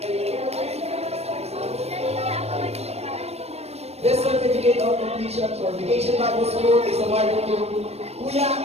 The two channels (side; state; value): left; late; 0.31 ms